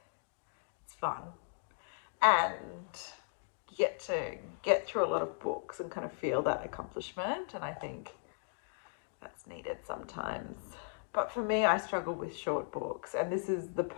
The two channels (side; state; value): right; silent; digital silence